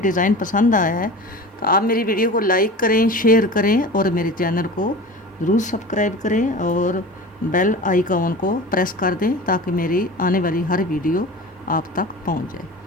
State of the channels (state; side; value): normal; both; correlation 0.35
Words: पसंद आया है तो आप मेरी वीडियो को लाइक करें, शेयर करें और मेरे चैनल को ज़रूर सब्सक्राइब करें और बेल आइकॉन को प्रेस कर दें ताकि मेरी आने वाली हर वीडियो आप तक पहुंच जाए।